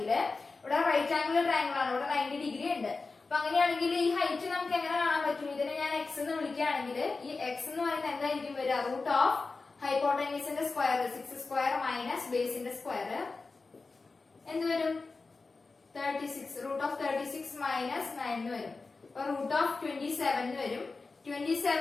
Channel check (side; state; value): right; quieter; 4.0 dB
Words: ഇവിടെ റൈറ്റ് ആംഗിൾ ട്രയാങ്കിൾ ആണ്. ഇവിടെ 90 ഡിഗ്രി ഉണ്ട്. അപ്പൊ അങ്ങനെയാണെങ്കിൽ ഈ ഹൈറ്റ് നമുക്ക് എങ്ങനെ കാണാൻ പറ്റും? ഇതിനെ ഞാൻ എക്സ് എന്ന് വിളിക്കുകയാണെങ്കിൽ ഈ എക്സ് എന്ന് പറയുന്നത് എന്തായിരിക്കും വരിക? റൂട്ട് ഓഫ് ഹൈപ്പോട്ടനീസിന്റെ സ്ക്വയർ 6 സ്ക്വയർ മൈനസ് ബേസിന്റെ സ്ക്വയർ എന്ത് വരും? 36. റൂട്ട് ഓഫ് 36 മൈനസ് 9 വരും. അപ്പൊ റൂട്ട് ഓഫ് 27 വരും.